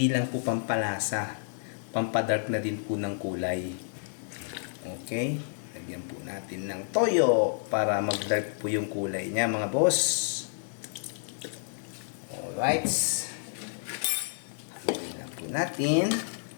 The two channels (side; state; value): right; silent; digital silence